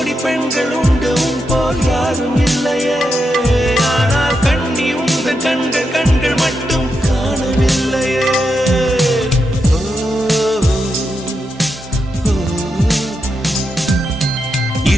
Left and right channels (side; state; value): both; normal; correlation 0.85